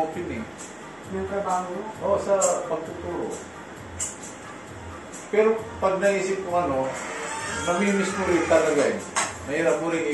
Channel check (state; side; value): noise; left; hum, 30 dB below the sound